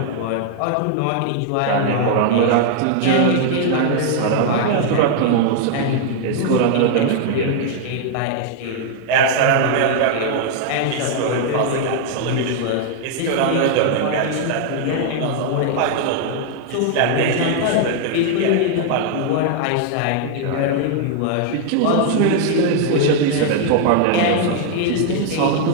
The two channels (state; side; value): different; both; correlation 0.00